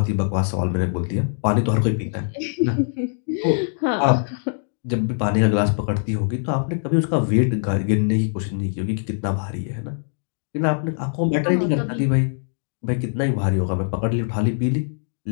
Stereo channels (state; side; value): silent; right; 64 dB below the other